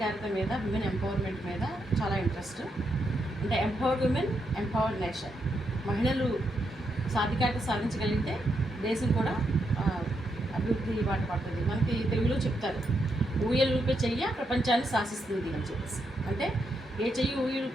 మీద, విమెన్ ఎంపవర్మెంట్ మీద చాలా ఇంట్రెస్ట్. అంటే ఎంపవర్డ్ విమెన్, ఎంపవర్డ్ నేషన్. మహిళలు సాధికారత సాధించగలిగితే దేశం కూడా అభివృద్ధి బాట పడుతుంది. మనకి తెలుగులో చెప్తారు, ఊయలు ఊపే చెయ్య ప్రపంచాన్ని శాసిస్తుంది అని చెప్పేసి. అంటే ఏ చెయ్యి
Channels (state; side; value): normal; both; correlation 0.81